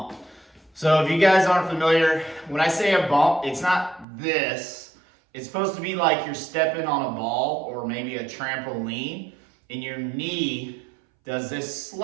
So if you guys aren't familiar, when I say a bump, it's not this. It's supposed to be like you're stepping on a ball or maybe a trampoline, and your knee does this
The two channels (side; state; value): left; drops out; at 4.0 s